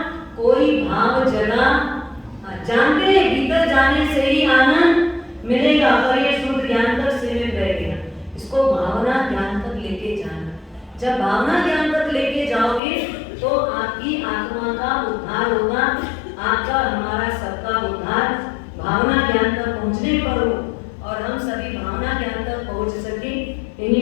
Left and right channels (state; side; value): drops out; right; at 12.8 s